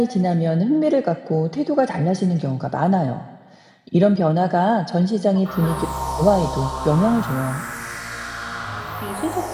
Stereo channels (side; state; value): both; identical; correlation 1.00